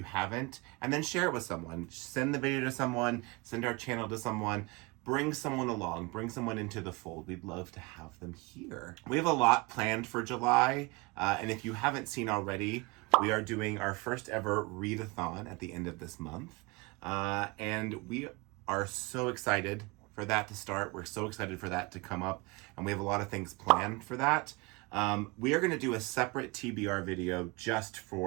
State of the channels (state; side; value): quieter; left; 25.4 dB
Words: haven't, and then share it with someone. Send the video to someone, send our channel to someone, bring someone along, bring someone into the fold. We'd love to have them here. We have a lot planned for July, and if you haven't seen already, we are doing our first ever Readathon at the end of this month, and we are so excited for that to start. We're so excited for that to come up, and we have a lot of things planned for that. We are going to do a separate TBR video just